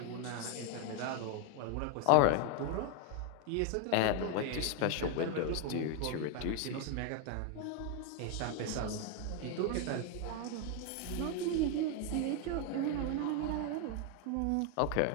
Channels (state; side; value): different; both; correlation 0.01